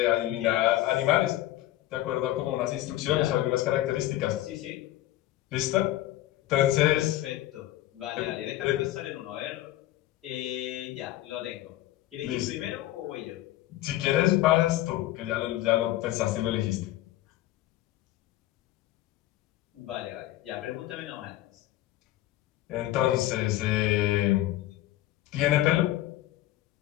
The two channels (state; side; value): quieter; right; 15.1 dB